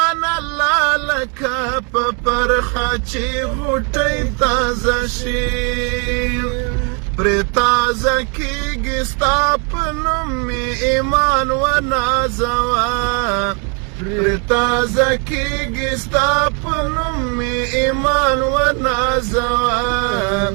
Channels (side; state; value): left; quieter; 33.2 dB